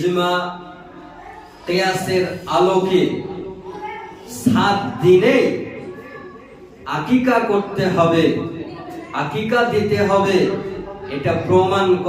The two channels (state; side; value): identical; both; correlation 1.00